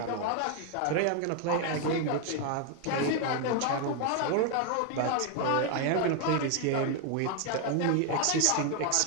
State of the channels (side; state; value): both; different; correlation 0.01